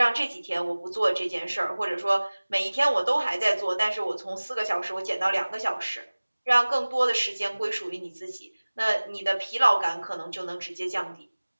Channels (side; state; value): both; inverted; correlation -1.00